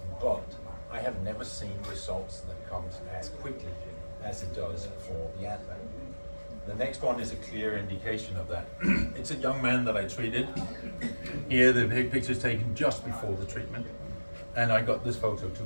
but I have never seen results that comes as quickly as it does for the Advalight. The next one is a clear indication of that. It's a young man that I treated. Here the picture is taken just before the treatment, and I got this photo 2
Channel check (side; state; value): both; inverted; correlation -1.00